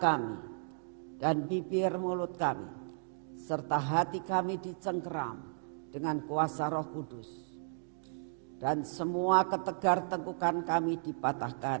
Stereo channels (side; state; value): left; silent; digital silence